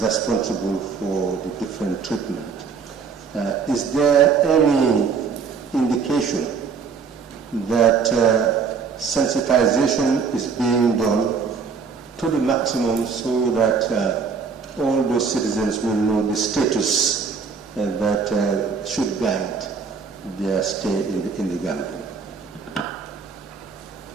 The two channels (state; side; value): quieter; left; 5.6 dB